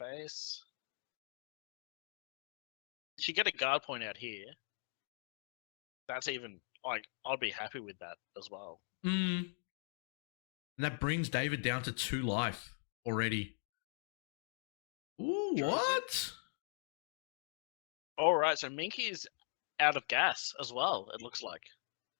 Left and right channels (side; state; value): right; silent; digital silence